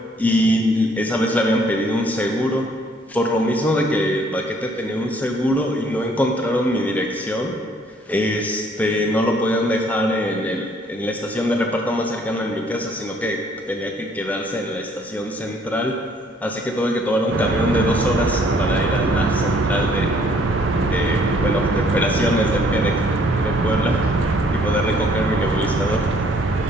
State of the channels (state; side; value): normal; both; correlation 0.62